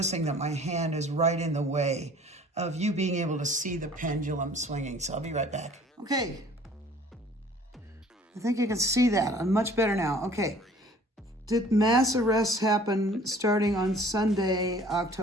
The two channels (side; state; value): both; normal; correlation 0.52